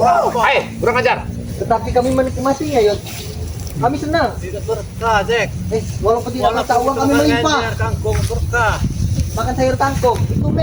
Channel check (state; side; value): identical; both; correlation 1.00